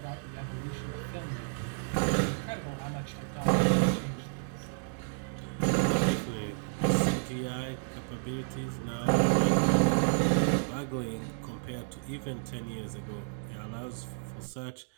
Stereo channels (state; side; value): silent; left; digital silence